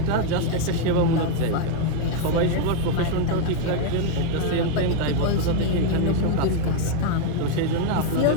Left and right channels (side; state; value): both; different; correlation 0.01